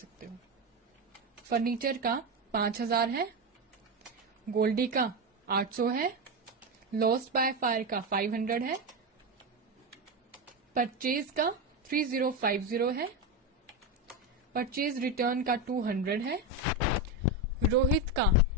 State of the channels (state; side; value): normal; both; correlation 0.13